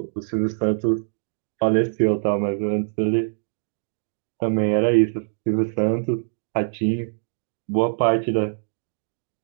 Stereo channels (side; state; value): left; silent; digital silence